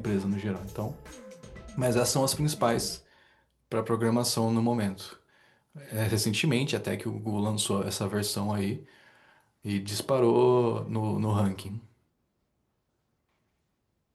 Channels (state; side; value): identical; both; correlation 1.00